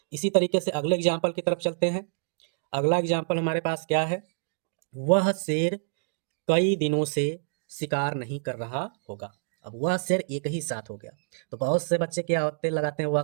इसी तरीके से अगले एग्जाम्पल की तरफ चलते हैं। अगला एग्जाम्पल हमारे पास क्या है, वह शेर कई दिनों से शिकार नहीं कर रहा होगा। अब वह शेर एक ही साथ हो गया। तो बहुत से बच्चे क्या होते लगाते हैं, वह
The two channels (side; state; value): left; silent; digital silence